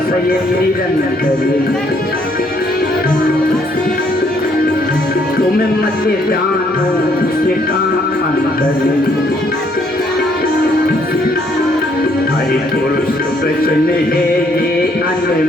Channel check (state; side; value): normal; both; correlation 0.68